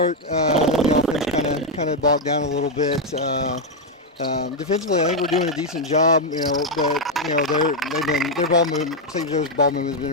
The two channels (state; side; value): normal; both; correlation 0.02